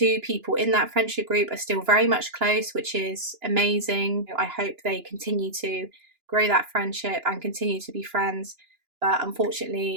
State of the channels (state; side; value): late; left; 2.9 ms